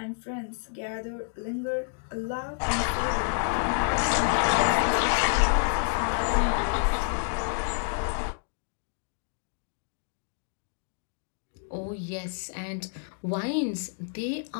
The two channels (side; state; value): right; silent; 59 dB below the other